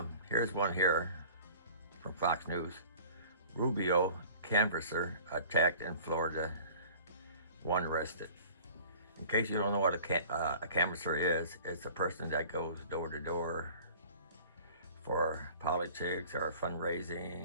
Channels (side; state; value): both; inverted; correlation -0.46